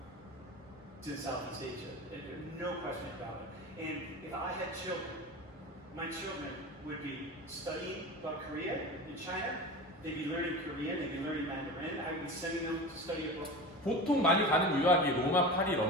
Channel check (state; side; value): normal; both; correlation 0.30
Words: in Southeast Asia. No question about it. And if I had children, my children would be studying about Korea and China. They'd be learning Korean, they'd be learning Mandarin. I would be sending them to study abroad. 보통 많이 가는 유학이 로마, 파리,